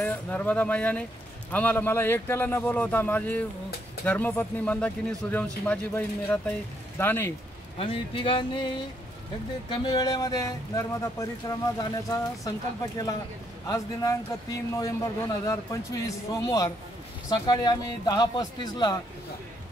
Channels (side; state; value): both; normal; correlation 0.74